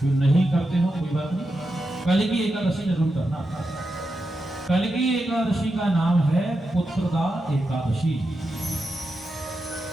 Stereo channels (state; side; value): normal; both; correlation 0.88